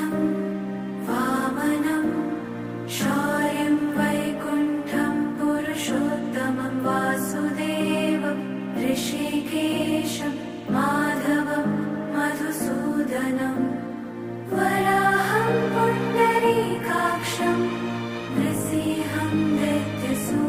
वामनं शौर्यं वैकुण्ठं पुरुषोत्तमं वासुदेवं ऋषिकेशं माधवं मधुसूदनं वराहं पुण्डरीकाक्षं नृसिंहं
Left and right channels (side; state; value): both; identical; correlation 1.00